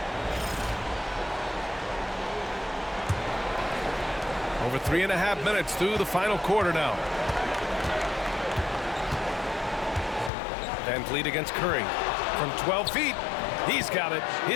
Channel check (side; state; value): right; drops out; at 10.3 s